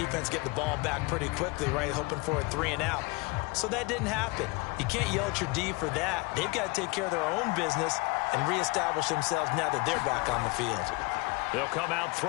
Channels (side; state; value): right; quieter; 26.3 dB